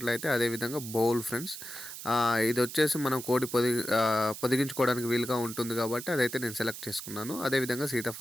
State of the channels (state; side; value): noise; right; hiss, 10 dB below the sound